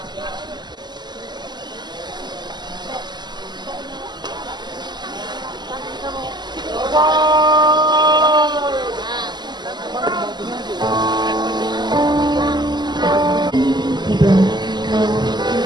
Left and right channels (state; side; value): late; left; 0.21 ms